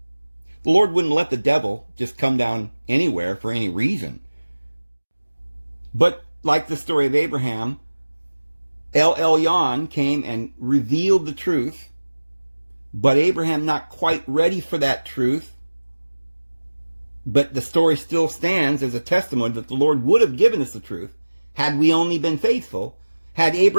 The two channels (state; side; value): inverted; both; correlation -1.00